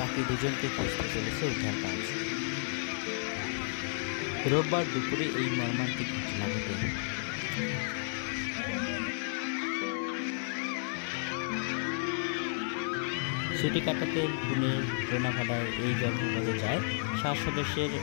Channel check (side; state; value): right; silent; 56 dB below the other